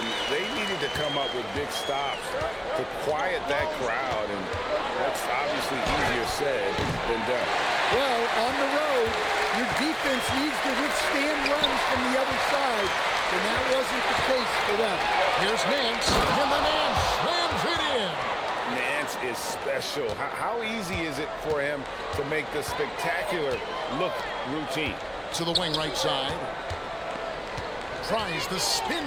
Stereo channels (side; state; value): both; identical; correlation 1.00